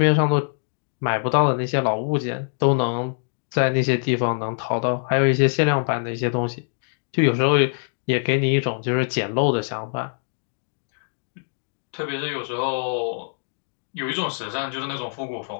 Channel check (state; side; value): silent; right; digital silence